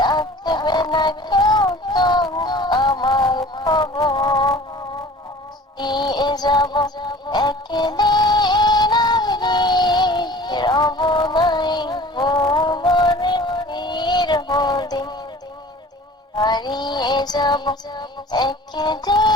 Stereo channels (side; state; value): both; normal; correlation 0.45